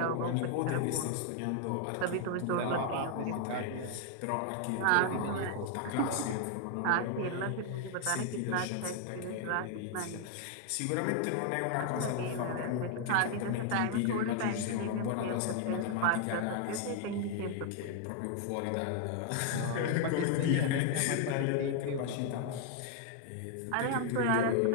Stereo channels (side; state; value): both; different; correlation 0.00